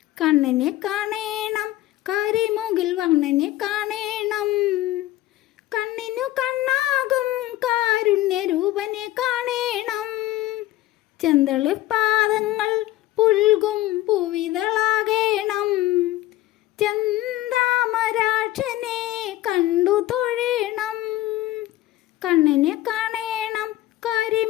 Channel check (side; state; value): right; quieter; 15.7 dB